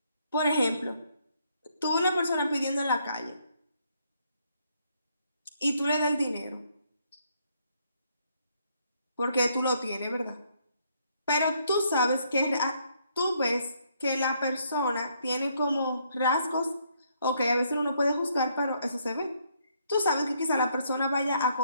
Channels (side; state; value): both; inverted; correlation -0.71